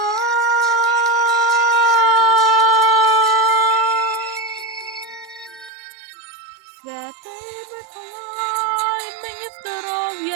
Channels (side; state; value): left; drops out; at 5.7 s